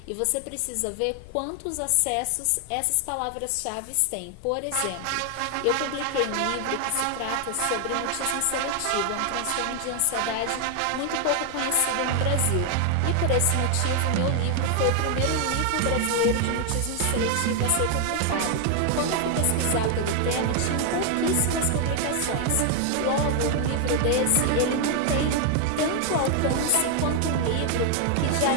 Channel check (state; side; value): different; both; correlation 0.00